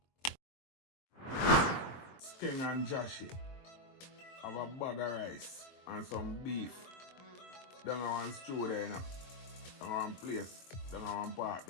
Skeng and Jahshii have a bag of rice and some beef down on one stew there, you know. Down on one place, down on one part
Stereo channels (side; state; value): right; late; 23 ms